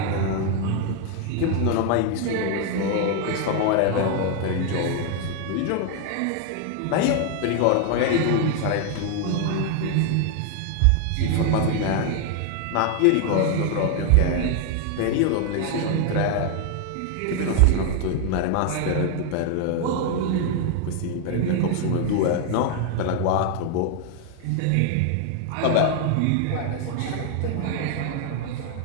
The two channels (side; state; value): both; different; correlation 0.01